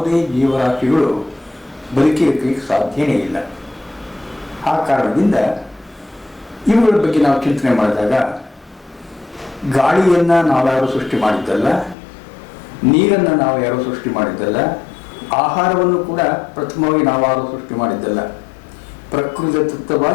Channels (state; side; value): drops out; right; at 12.0 s